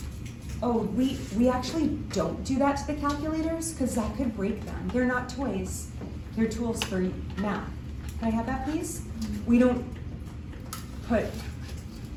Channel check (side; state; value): both; identical; correlation 1.00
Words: oh, we actually don't do that to the calculators because that could break them. They're not toys, they're tools for math. Can I have that, please? We don't put